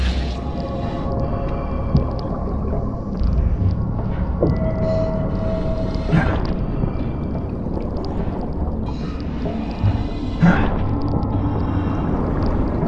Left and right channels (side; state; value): both; identical; correlation 1.00